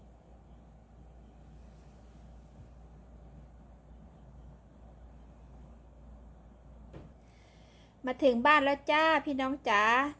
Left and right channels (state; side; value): identical; both; correlation 1.00